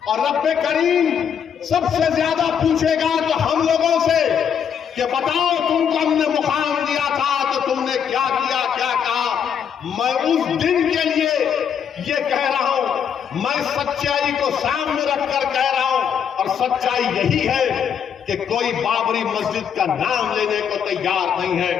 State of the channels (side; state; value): right; quieter; 7.9 dB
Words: और रब्बे करीम सबसे ज्यादा पूछेगा तो हम लोगों से कि बताओ तुमको हमने मुकाम दिया था तो तुमने क्या किया, क्या कहा। मैं उस दिन के लिए ये कह रहा हूं, मैं सच्चाई को सामने रखकर कह रहा हूं और सच्चाई यही है कि कोई बाबरी मस्जिद का नाम लेने को तैयार नहीं है।